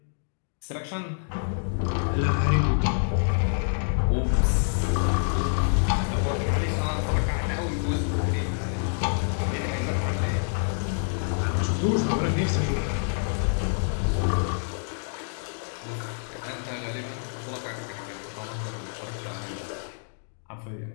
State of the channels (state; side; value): silent; right; digital silence